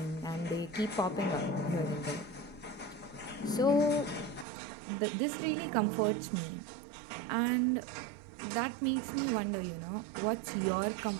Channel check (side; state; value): left; drops out; at 4.5 s